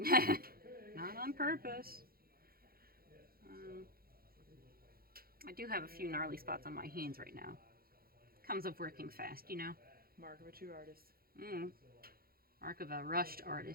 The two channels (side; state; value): left; late; 0.43 ms